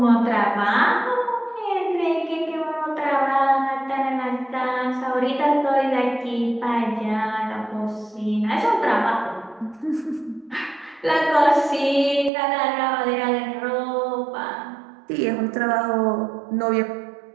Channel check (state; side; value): drops out; left; at 12.3 s